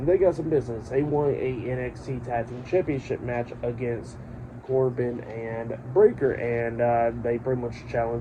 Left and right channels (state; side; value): identical; both; correlation 1.00